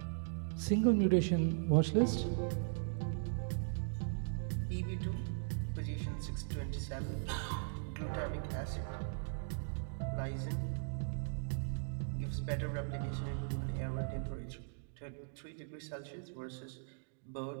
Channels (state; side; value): silent; left; digital silence